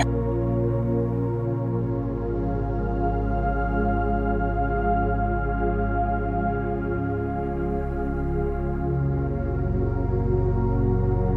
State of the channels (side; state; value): both; identical; correlation 1.00